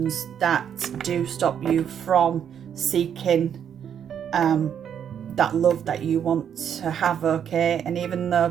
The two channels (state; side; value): quieter; left; 8.6 dB